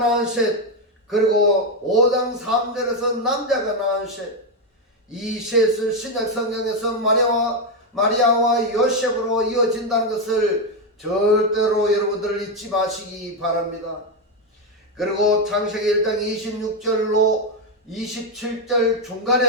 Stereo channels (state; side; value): normal; both; correlation 0.06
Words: 셋, 그리고 5장 3절에서 남자가 낳은 셋, 이 셋을 신약 성경에서 마리아와 요셉으로 이어진다는 것을 절대로 여러분들 잊지 마시기 바랍니다. 그리고 창세기 1장 26절로 27절